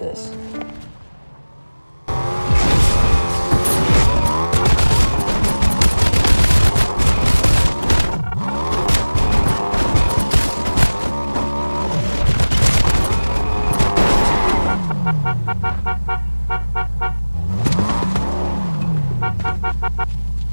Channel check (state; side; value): inverted; both; correlation -1.00